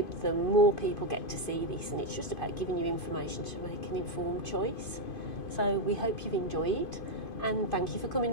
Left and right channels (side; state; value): right; late; 2.5 ms